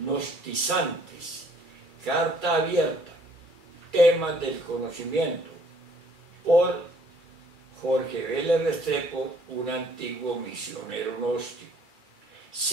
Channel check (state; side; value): late; left; 2.3 ms